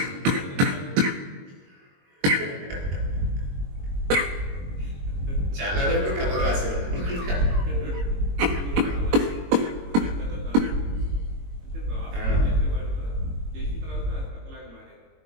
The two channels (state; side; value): late; left; 22 ms